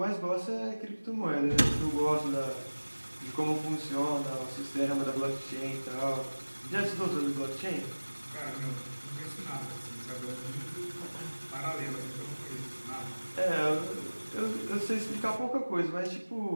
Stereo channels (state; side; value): inverted; both; correlation -1.00